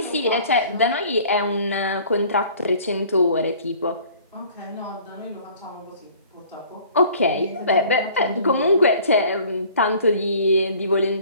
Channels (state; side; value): inverted; both; correlation -0.51